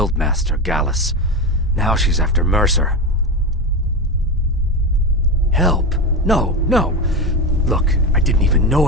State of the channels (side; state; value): both; normal; correlation 0.18